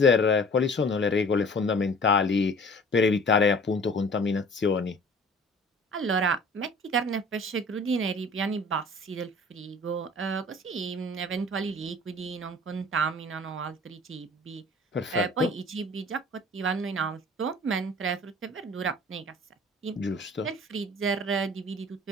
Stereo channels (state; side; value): normal; both; correlation 0.48